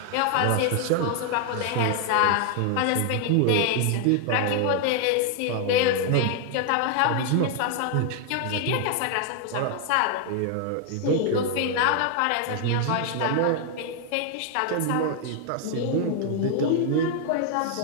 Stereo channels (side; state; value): both; different; correlation 0.00